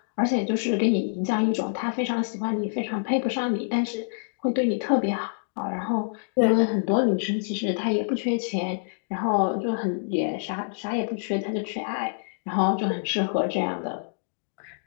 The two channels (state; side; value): silent; right; digital silence